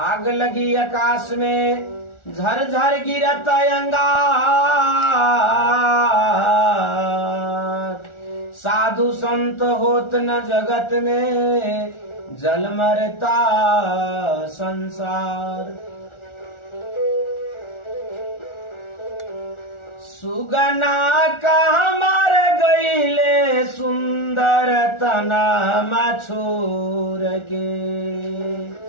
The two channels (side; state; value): right; late; 1.4 ms